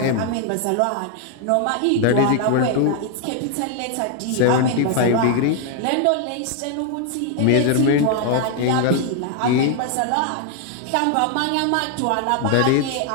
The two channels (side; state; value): both; different; correlation 0.00